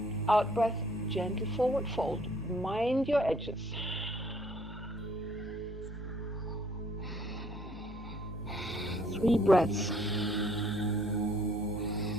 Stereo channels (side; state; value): both; normal; correlation 0.62